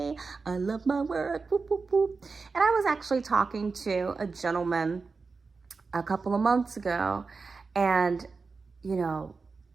I love my work. Whoop, whoop, whoop. And I was actually talking to a gentleman a couple of months ago. And,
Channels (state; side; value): quieter; left; 4.4 dB